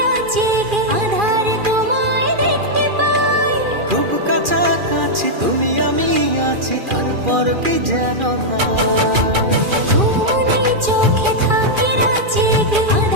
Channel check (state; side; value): late; left; 2.4 ms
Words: রাত জেগে, আধারে তোমায় দেখতে পাই। খুব কাছাকাছি তুমি আমি আছি, তারপর কি যেন না। ঘুমনে চোখে থাকে রাত জেগে,